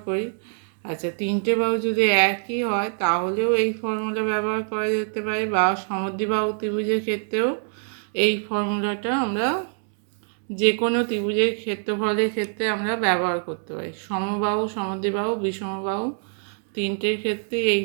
করি। আচ্ছা, তিনটে বাহু যদি একই হয় তাহলেও এই ফর্মুলা ব্যবহার করা যেতে পারে, বা সমদ্বিবাহু ত্রিভুজের ক্ষেত্রেও এই ফর্মুলাটা আমরা যে কোনো ত্রিভুজের ক্ষেত্রফলের ক্ষেত্রে আমরা ব্যবহার করতে পারি। সমবাহু, সমদ্বিবাহু, বিষমবাহু তিনটের ক্ষেত্রে এই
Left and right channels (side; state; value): left; silent; 62 dB below the other